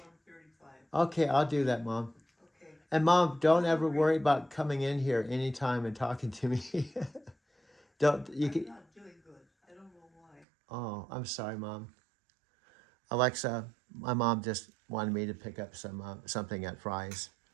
135. Okay, I'll do that, Mom. Okay. And Mom, don't ever worry about coming in here anytime and talking to me. Don't you I'm can? not doing good. I don't know why. Oh, I'm sorry, Mom. Alexa, my mom just wanted me to pick up something at Fry's,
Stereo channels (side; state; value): left; drops out; at 10.5 s